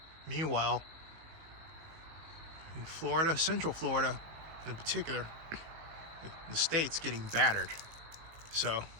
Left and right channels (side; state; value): left; late; 19 ms